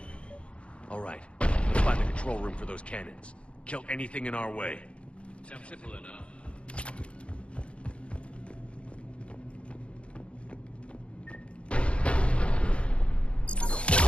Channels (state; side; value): late; right; 0.059 ms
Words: All right, let's find the control room for those cannons. Kill anything in our way. Sounds simple enough.